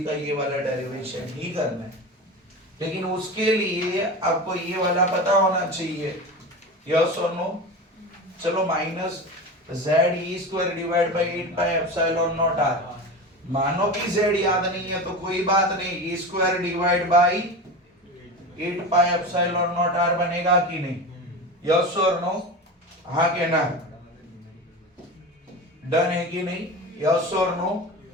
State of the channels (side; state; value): both; normal; correlation 0.27